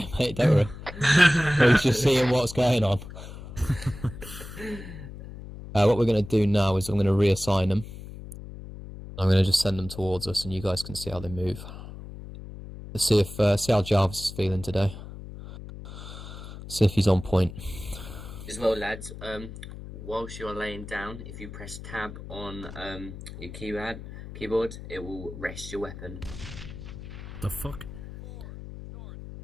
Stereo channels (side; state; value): left; noise; hum, 12 dB below the sound